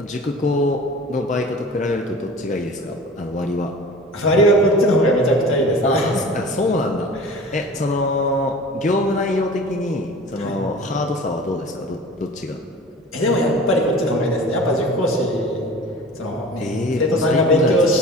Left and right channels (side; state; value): both; normal; correlation 0.40